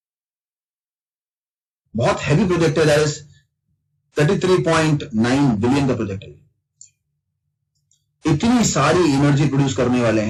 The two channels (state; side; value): identical; both; correlation 1.00